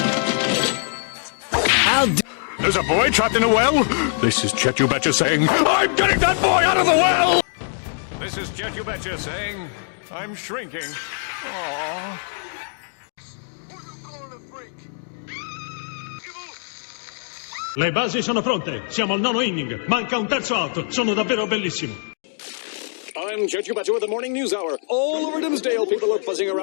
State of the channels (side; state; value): right; silent; digital silence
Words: There's a boy trapped in a well. This is Chet Ubecha saying, I'm getting that boy out of the well. This is Chet Ubecha saying, I'm shrinking. Aww. Le basi sono pronte, siamo al nono inning, manca un terzo out, sono davvero bellissimo. I'm Chet Ubecha with the Morning News Hour. All over Dimsdale, people are buzzing